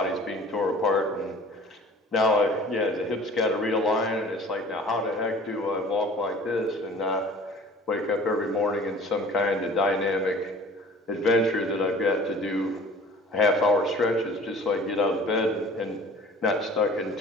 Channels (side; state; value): both; normal; correlation 0.46